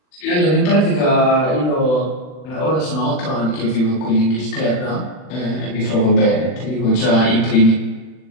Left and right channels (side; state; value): right; late; 39 ms